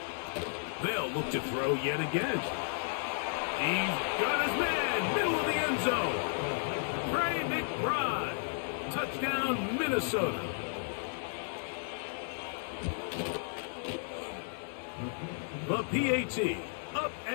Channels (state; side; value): silent; right; digital silence